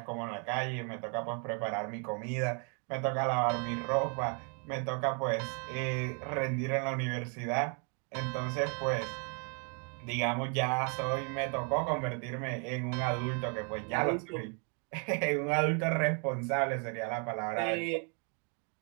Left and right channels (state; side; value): quieter; left; 38.3 dB